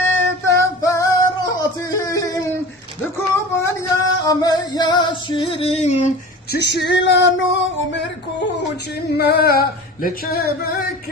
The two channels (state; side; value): normal; both; correlation 0.36